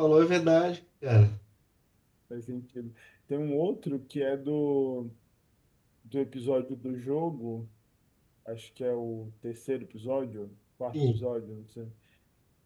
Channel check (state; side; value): identical; both; correlation 1.00